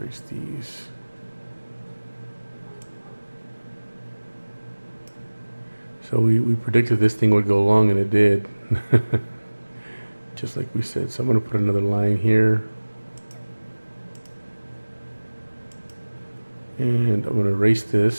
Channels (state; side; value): inverted; both; correlation -1.00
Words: these. So we predicted this thing would go long, and it did. Just like we said. So I'm going to put another line here. And I'm going to erase